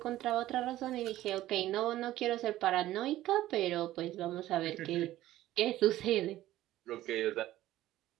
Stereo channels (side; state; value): left; quieter; 14.8 dB